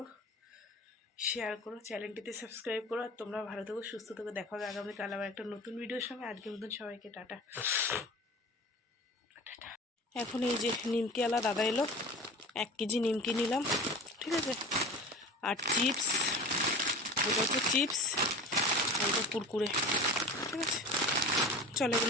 শেয়ার করো, চ্যানেলটিতে সাবস্ক্রাইব করো। আর তোমরা ভালো থেকো, সুস্থ থেকো। দেখা হবে আগামীকাল আবার একটা নতুন ভিডিওর সঙ্গে। আজকের মতন সবাইকে টাটা। এখন এই যে নিমকি আলা দাদা এলো, 1 কেজি নিমকি নিলাম, ঠিক আছে। আর চিপস, ওটা হচ্ছে চিপস, আর এটা কুরকুরে, ঠিক আছে। চলো,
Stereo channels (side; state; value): both; normal; correlation 0.35